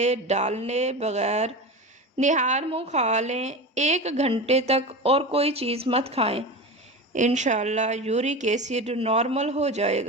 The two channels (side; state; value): both; normal; correlation 0.26